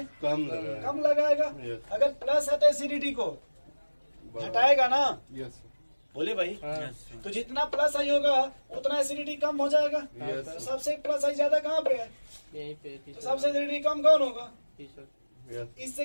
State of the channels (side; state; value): both; inverted; correlation -1.00